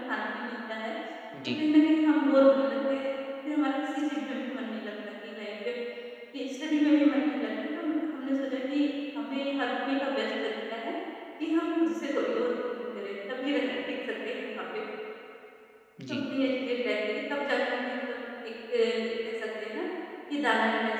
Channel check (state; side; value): identical; both; correlation 1.00